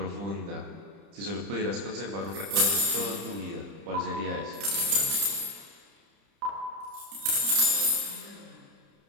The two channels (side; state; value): left; late; 30 ms